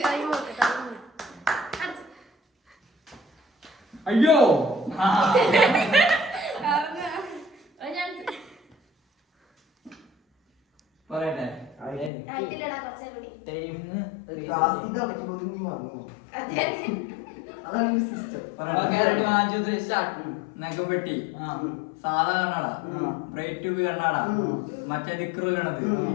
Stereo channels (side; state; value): right; drops out; at 12.1 s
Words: അയ്യോ പറയട്ടെ. നഖം വെട്ടി സാധാ കണ്ണട, ബ്രൈറ്റ് ട്യൂബ് കണ്ണട, മറ്റേ ദിക്റ് കണത്,